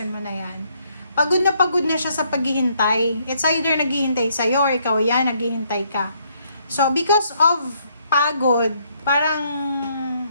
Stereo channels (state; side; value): inverted; both; correlation -0.70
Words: mo na yan. Pagod na siya sa paghihintay. It's either naghihintay sa'yo, or ikaw yan, naghihintay ka. So, because of pagod, parang